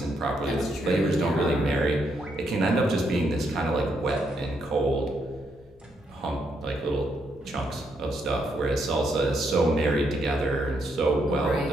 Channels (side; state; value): both; normal; correlation 0.77